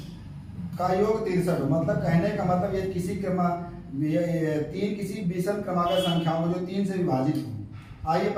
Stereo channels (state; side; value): identical; both; correlation 1.00